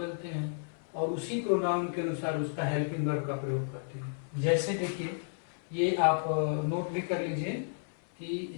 हैं और उसी प्रोनाउन के अनुसार उसका हेल्पिंग वर्ब का प्रयोग करते हैं। जैसे देखिए, ये आप नोट भी कर लीजिए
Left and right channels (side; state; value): right; silent; 56 dB below the other